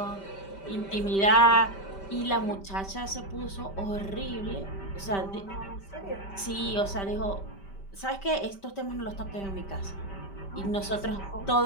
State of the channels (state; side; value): late; right; 5.1 ms